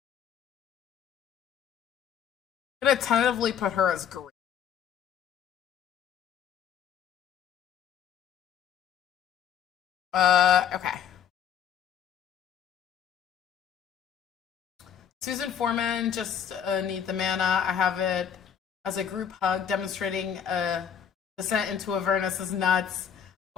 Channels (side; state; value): right; quieter; 8.6 dB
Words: I'm gonna tentatively put her as green. Okay. Susan Foreman, just need the mana. I have it as a group hug demonstrating a descent into Avernus is nuts,